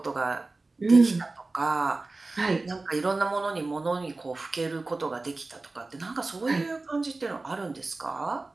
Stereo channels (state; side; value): quieter; left; 3.4 dB